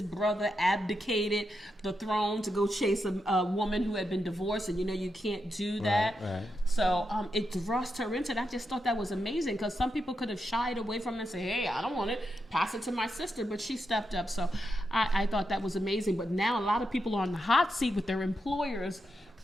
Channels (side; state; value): both; normal; correlation 0.85